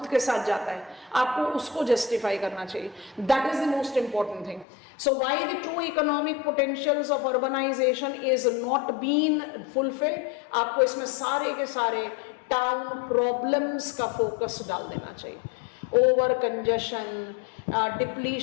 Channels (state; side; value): drops out; right; at 4.7 s